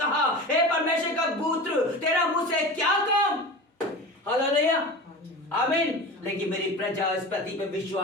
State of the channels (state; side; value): normal; both; correlation 0.32